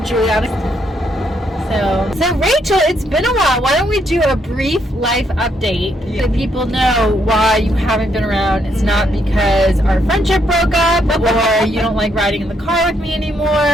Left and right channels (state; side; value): normal; both; correlation 0.74